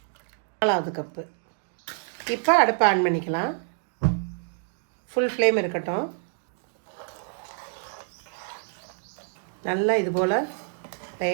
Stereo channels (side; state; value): left; silent; digital silence